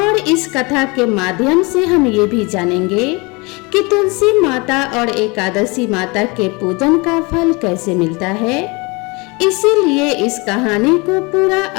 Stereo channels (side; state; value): right; quieter; 27.2 dB